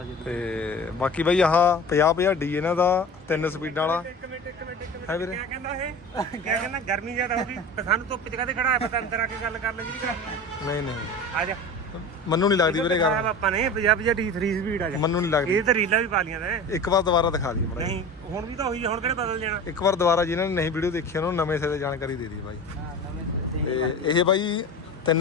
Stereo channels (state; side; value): normal; both; correlation 0.34